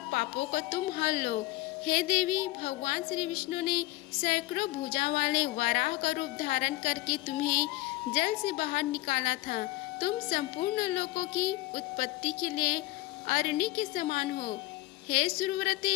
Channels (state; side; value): quieter; right; 19.1 dB